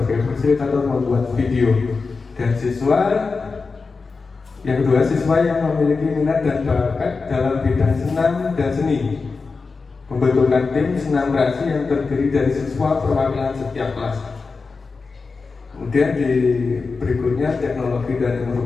fasilitator membuat video, dan siswa yang kedua siswa yang memiliki minat dan bakat dalam bidang senam dan seni, membentukkan tim senam kreasi yang terdiri dari siswa perwakilan setiap kelas. Kemudian di berikutnya teknologi dan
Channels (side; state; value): right; quieter; 4.4 dB